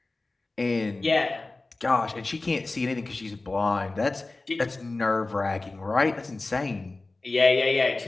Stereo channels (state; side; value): quieter; right; 3.2 dB